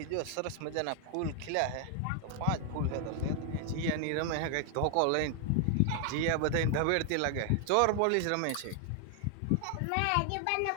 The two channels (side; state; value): both; different; correlation 0.00